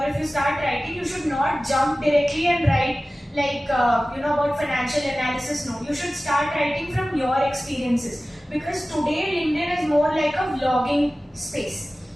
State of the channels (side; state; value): both; normal; correlation 0.96